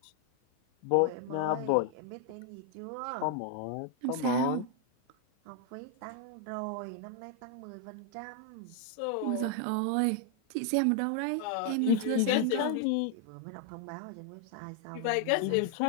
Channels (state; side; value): different; both; correlation 0.00